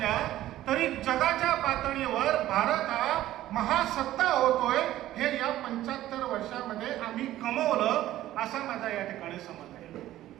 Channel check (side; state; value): left; quieter; 14.2 dB